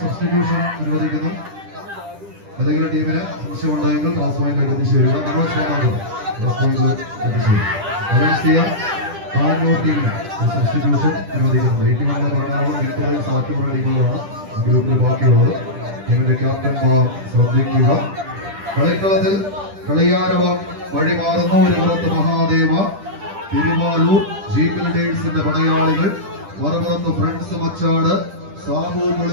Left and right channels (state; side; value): late; left; 10 ms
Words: അനുവദിക്കുന്നു. ഏതെങ്കിലും ടീമിന് സംശയം ഉണ്ടെങ്കിൽ ക്ലാസ് പോയിന്റിലേക്ക് എത്തിച്ചേരുക. ബാംഗ്ലൂർ ടീമിന് ഒരു സബ്സ്റ്റിറ്റ്യൂഷൻ അനുവദിക്കുന്നത്. 81 എറണാകുളം, 80 സാറ്റുപുറ ടീമുകളാണ് ഗ്രൂപ്പിൽ ബാക്കിയുള്ളത്. ടീമിന്റെ ക്യാപ്റ്റന്മാർ ശ്രദ്ധിക്കുക. കളിക്കളത്തിൽ കളിയാരവം വഴിമാറുന്നു. ഒരു പുറത്ത് മഹാദേവ, തിരുവാലൂർ ജീപ്പ് ലീഡേഴ്സിന്റെ പടയാളികൾ, മറുപുറത്ത് ഫ്രണ്ട്സ് മച്ചാട്, സാബു